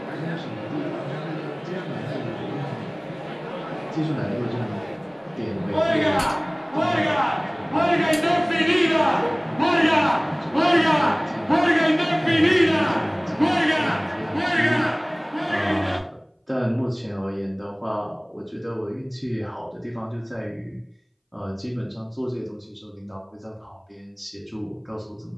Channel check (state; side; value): identical; both; correlation 1.00